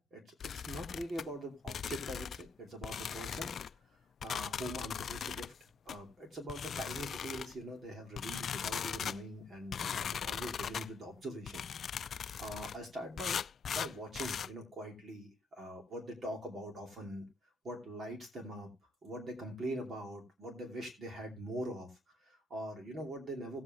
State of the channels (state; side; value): quieter; right; 3.0 dB